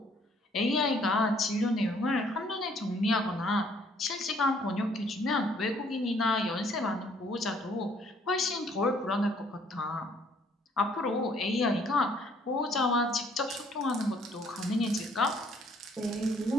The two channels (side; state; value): both; normal; correlation 0.63